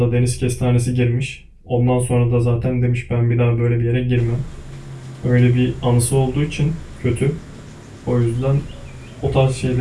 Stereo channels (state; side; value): identical; both; correlation 1.00